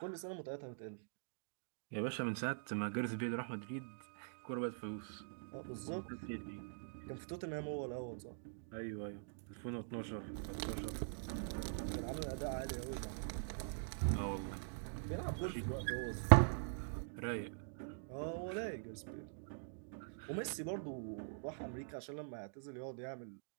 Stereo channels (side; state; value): left; silent; digital silence